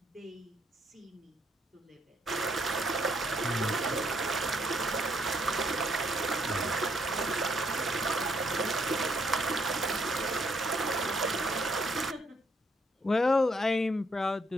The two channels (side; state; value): both; normal; correlation 0.71